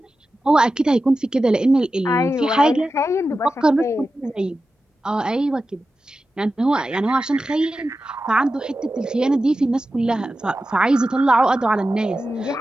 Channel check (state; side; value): normal; both; correlation 0.93